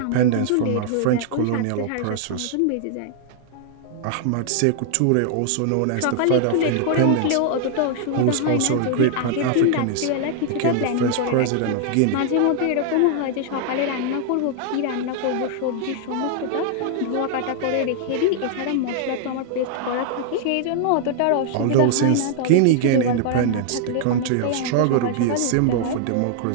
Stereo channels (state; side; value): different; both; correlation 0.00